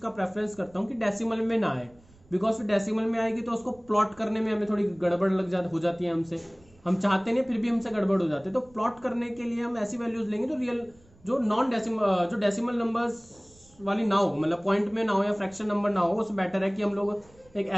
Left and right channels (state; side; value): noise; right; rumble, 28 dB below the sound